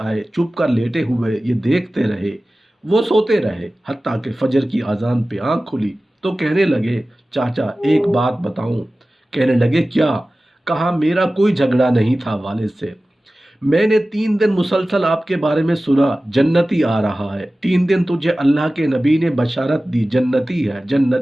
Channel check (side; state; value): both; normal; correlation 0.96